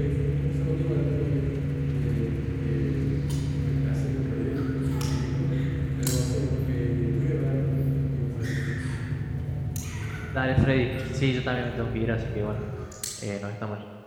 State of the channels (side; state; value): both; identical; correlation 1.00